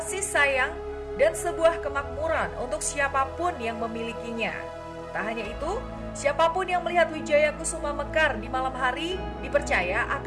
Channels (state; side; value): identical; both; correlation 1.00